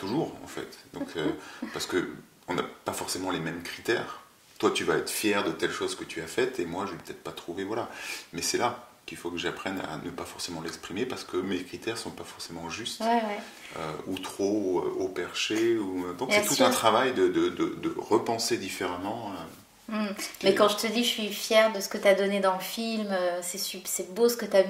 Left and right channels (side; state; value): both; identical; correlation 1.00